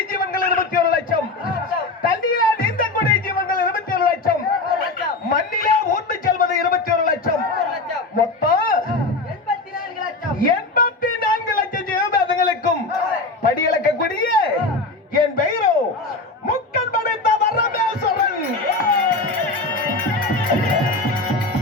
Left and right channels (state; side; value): quieter; right; 3.2 dB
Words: ஜீவன்கள் 21 லட்சம் தண்ணியில நீந்தக்கூடிய ஜீவன்கள் 21 லட்சம் மண்ணிலே ஊர்ந்து செல்வது 21 லட்சம் மொத்தம் 84 லட்சம் ஜீவபாதங்களுக்கும் படியளக்கக்கூடிய என் பெயரோ முக்கன் படைத்த வரமேஸ்வரன்.